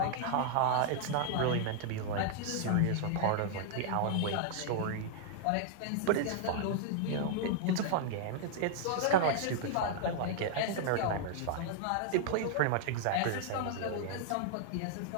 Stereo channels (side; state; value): both; different; correlation -0.01